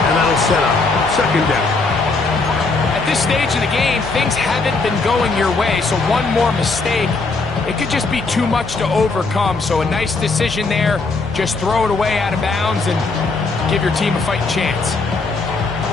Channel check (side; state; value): right; quieter; 3.8 dB